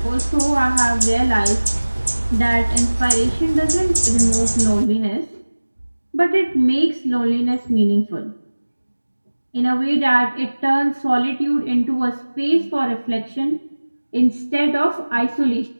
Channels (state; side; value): inverted; both; correlation -1.00